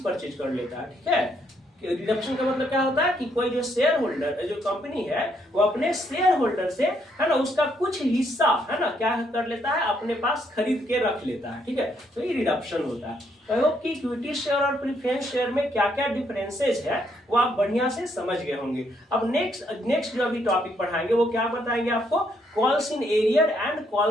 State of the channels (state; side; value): normal; both; correlation 0.73